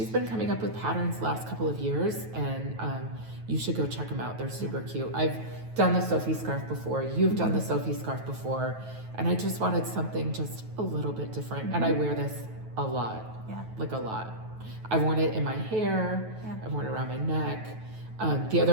been coming up with patterns the last couple of years, and you should go check them out. They're super cute. I've done the Sophie scarf before. You've done the Sophie scarf before, and I just wanted something just a little bit different, and I wear this a lot. Yeah. Like a lot. I've worn it in my hair. Yeah. I've worn it around my neck. The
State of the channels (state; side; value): late; left; 9.2 ms